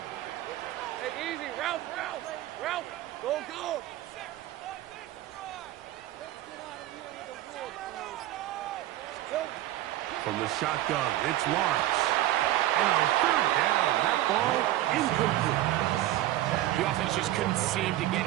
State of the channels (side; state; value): left; quieter; 14.9 dB